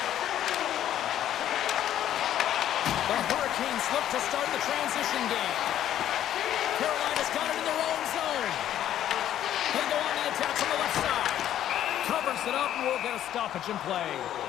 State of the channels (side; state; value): right; quieter; 11.4 dB